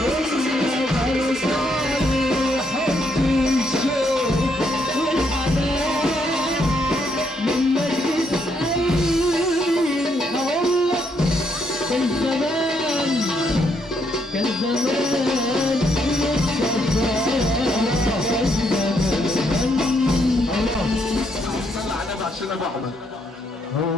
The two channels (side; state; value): both; normal; correlation 0.74